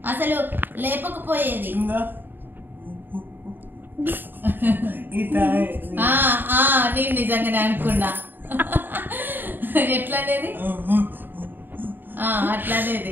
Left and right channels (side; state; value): left; late; 0.093 ms